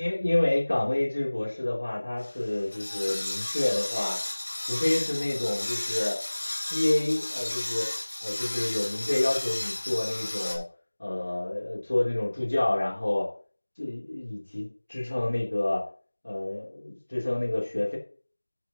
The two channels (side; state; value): both; inverted; correlation -1.00